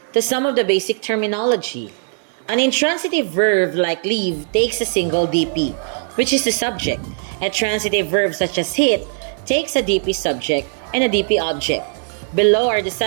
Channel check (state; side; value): silent; left; digital silence